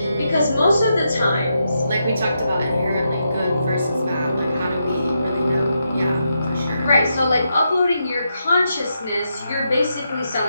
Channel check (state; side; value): inverted; both; correlation -0.83